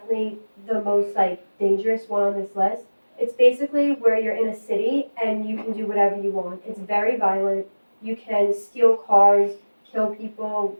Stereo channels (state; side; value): inverted; both; correlation -1.00